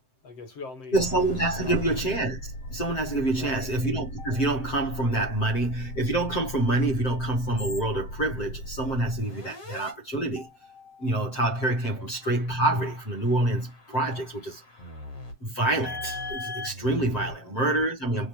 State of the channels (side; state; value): right; late; 7.7 ms